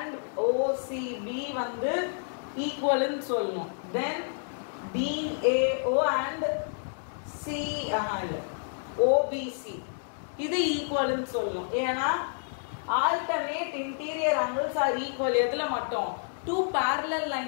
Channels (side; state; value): right; silent; digital silence